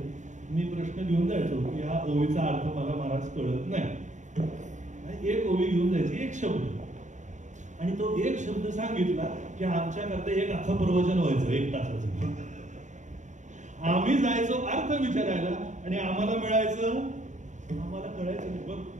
मी प्रश्न घेऊन जायचो की हा ओवीचा अर्थ मला महाराज कळत नाही. एक ओवी घेऊन जायची, एक शब्द, आणि तो एक शब्द सांगितला की आमच्याकरता एक अख्खं प्रवचन व्हायचं 1 तासाचं. आम्ही जायचो अर्थ विचारायला आणि आम्हाला मिळायचं, आम्हाला कळायचं नाही. बघ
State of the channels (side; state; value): left; late; 0.35 ms